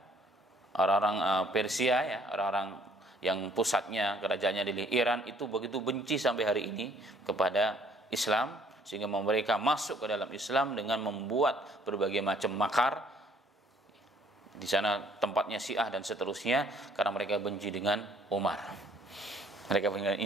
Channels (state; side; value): normal; both; correlation 0.61